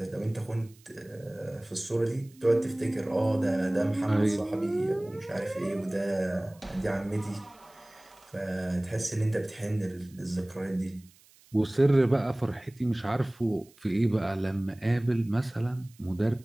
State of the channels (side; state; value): right; noise; hiss, 28 dB below the sound